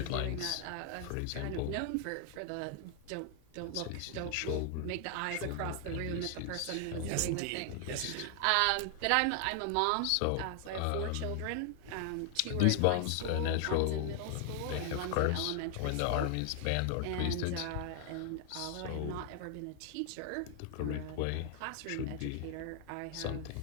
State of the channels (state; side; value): different; both; correlation 0.00